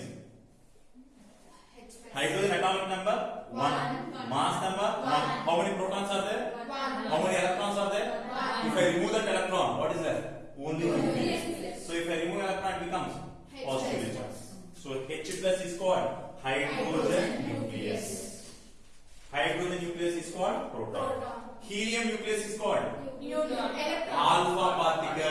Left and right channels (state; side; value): identical; both; correlation 1.00